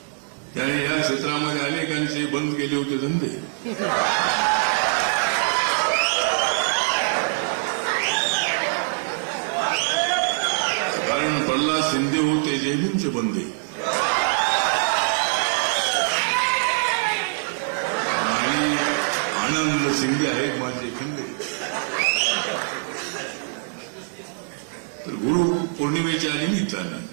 त्याने या क्षेत्रामध्ये अनेकांचे बंद केले होते धंदे. कारण प्रल्हाद शिंदे होते जयभीमचे बंदे आणि आनंद शिंदे आहेत माझे खंदे. तर गुरु पौर्णिमेच्या निमित्ताने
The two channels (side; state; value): left; silent; 59 dB below the other